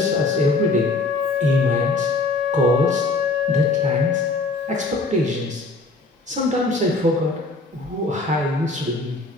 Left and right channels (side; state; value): right; quieter; 3.2 dB